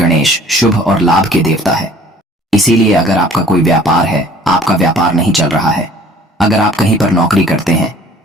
शुभ और लाभ के देवता है। इसीलिए अगर आपका कोई व्यापार है, आपका व्यापार नहीं चल रहा है, अगर आप कहीं पर नौकरी करते हैं,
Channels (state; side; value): normal; both; correlation 0.52